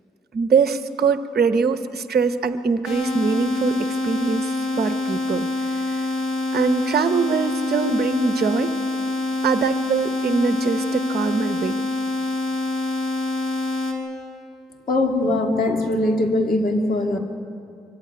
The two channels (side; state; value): both; normal; correlation 0.66